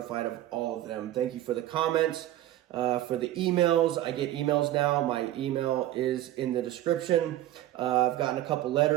of all of them. Thank you for the comments, for the emails. I get emails now. My email is in the description. I've gotten a couple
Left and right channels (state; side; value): quieter; left; 13.9 dB